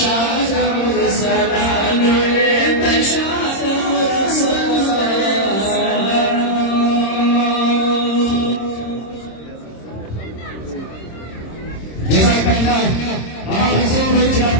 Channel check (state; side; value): late; right; 26 ms